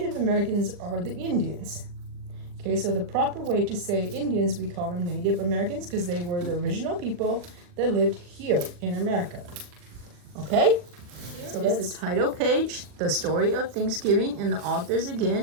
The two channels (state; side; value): late; left; 40 ms